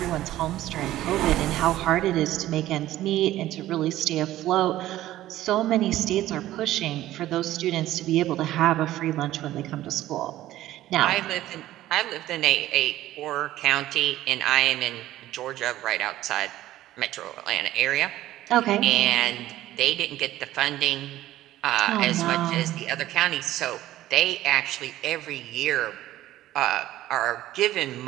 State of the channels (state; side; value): quieter; left; 14.5 dB